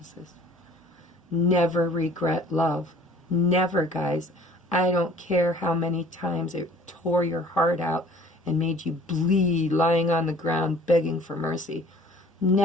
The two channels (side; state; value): both; normal; correlation 0.51